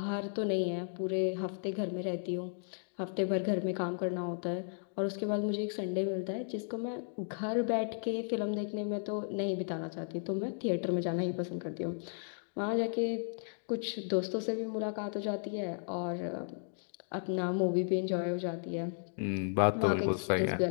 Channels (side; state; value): right; silent; digital silence